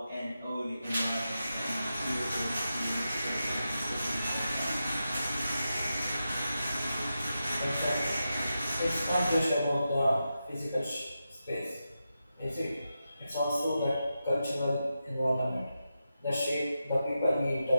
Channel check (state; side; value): inverted; both; correlation -0.89